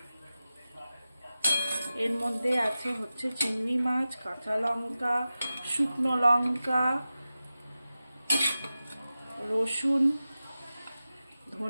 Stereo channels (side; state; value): both; inverted; correlation -0.94